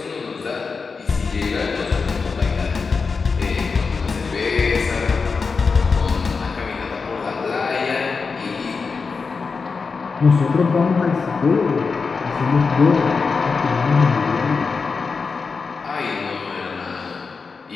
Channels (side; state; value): right; quieter; 4.8 dB